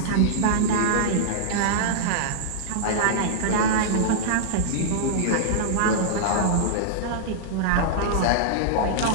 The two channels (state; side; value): different; both; correlation -0.02